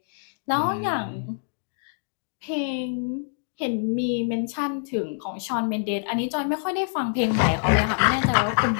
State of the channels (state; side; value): silent; right; digital silence